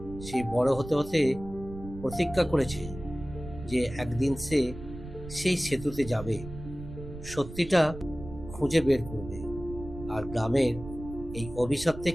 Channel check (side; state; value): right; noise; rumble, 12 dB below the sound